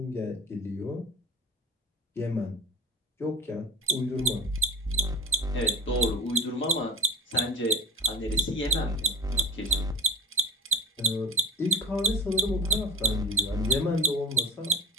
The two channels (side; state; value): both; normal; correlation 0.39